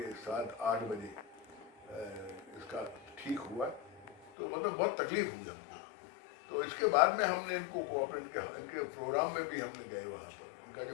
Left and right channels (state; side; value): drops out; right; at 4.3 s